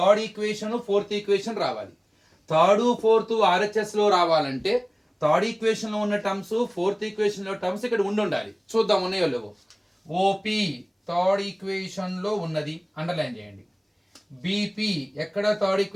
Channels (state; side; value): identical; both; correlation 1.00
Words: equation fourth equation రావాలి. Third fourth RHS లో రావాలంటే third equation లో ఉన్న terms fourth equation లో terms ఇక్కడ ఉండాలి. చూద్దాం ఉన్నాయో లేవో. OP థర్డ్ ఈక్వేషన్ లో ఉన్నది, అండర్లైన్ చేయండి. BP ఎక్కడ థర్డ్